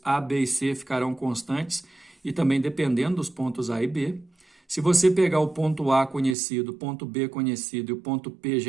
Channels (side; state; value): left; drops out; at 6.4 s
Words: A, B e C ficarão constantes, e também dependendo dos pontos A e B. Se você pegar o ponto A conhecido, o ponto B conhecido e o ponto P